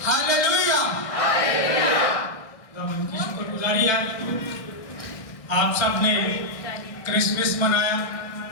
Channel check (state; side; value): late; right; 1.6 ms